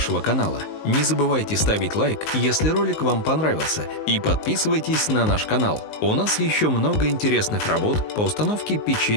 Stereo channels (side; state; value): right; late; 19 ms